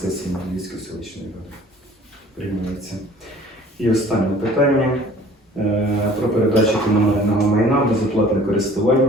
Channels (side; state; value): both; normal; correlation 0.51